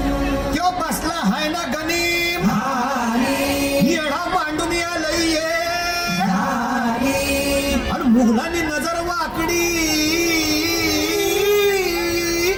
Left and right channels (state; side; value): identical; both; correlation 1.00